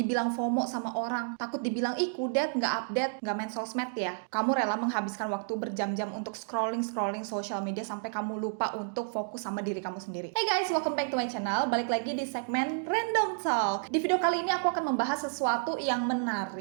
FOMO sama orang. Takut dibilang, ih kudet, gak update, gak main sosmed ya. Kamu rela menghabiskan waktu berjam-jam untuk scrolling sosial media sampai kamu lupa untuk fokus sama diri kamu sendiri. Hey guys, welcome back to my channel. Balik lagi di segmen Random Talk. Di video kali ini aku akan membahas sesuatu yang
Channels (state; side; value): silent; left; digital silence